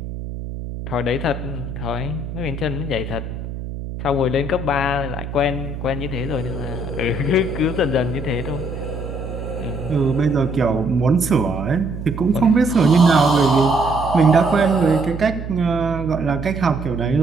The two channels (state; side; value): noise; right; hum, 8 dB below the sound